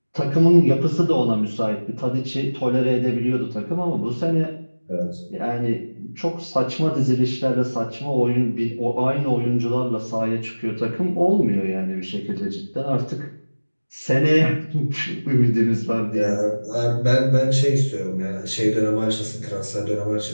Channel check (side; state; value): both; inverted; correlation -1.00